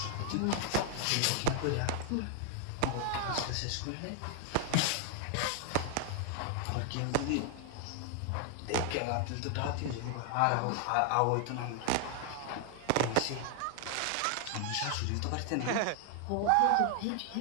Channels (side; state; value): both; different; correlation 0.00